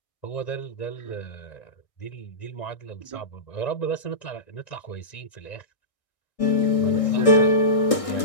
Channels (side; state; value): right; late; 1.6 ms